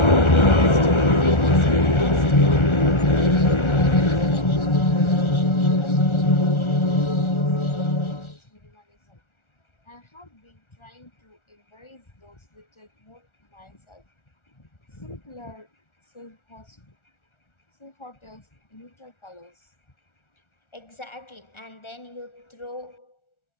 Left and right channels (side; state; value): right; late; 1.4 ms